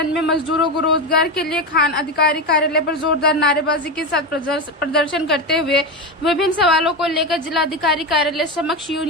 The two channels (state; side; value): normal; both; correlation 0.16